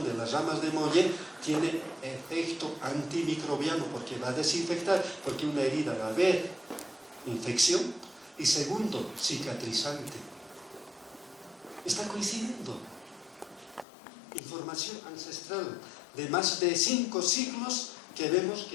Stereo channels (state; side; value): drops out; right; at 13.9 s